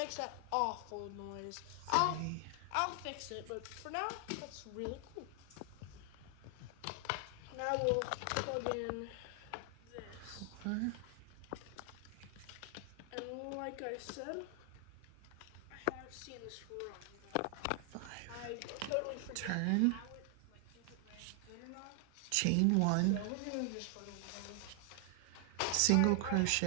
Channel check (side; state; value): both; different; correlation 0.00